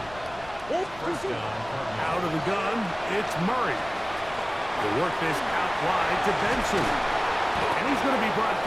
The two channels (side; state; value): left; noise; rumble, 19 dB below the sound